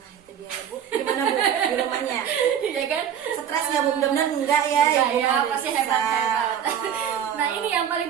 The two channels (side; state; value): left; quieter; 9.0 dB